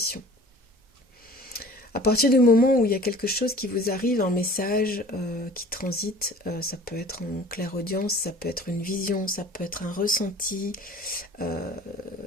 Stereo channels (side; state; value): both; normal; correlation 0.46